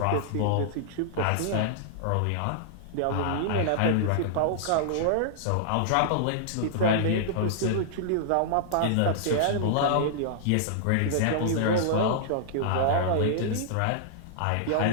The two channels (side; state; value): both; different; correlation -0.01